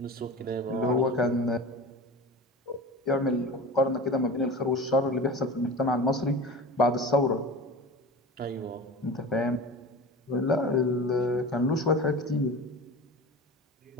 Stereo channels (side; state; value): both; normal; correlation 0.33